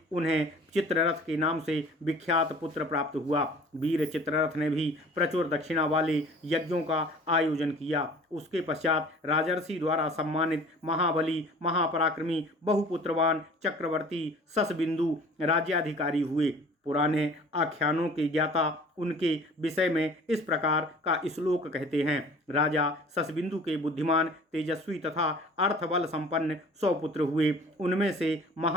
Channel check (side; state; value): both; normal; correlation 0.47